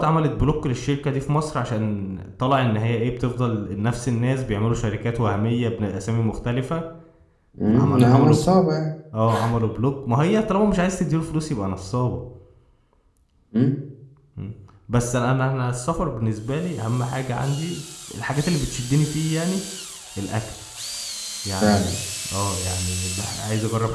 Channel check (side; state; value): both; identical; correlation 1.00